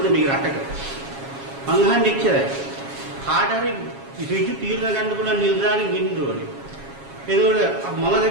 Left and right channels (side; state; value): left; late; 7.3 ms